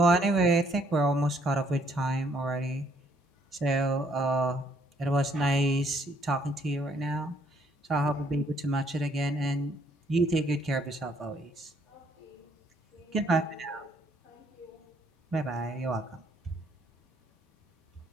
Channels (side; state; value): both; normal; correlation 0.67